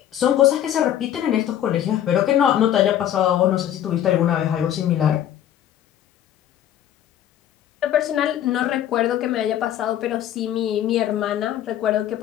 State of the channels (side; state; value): right; quieter; 11.1 dB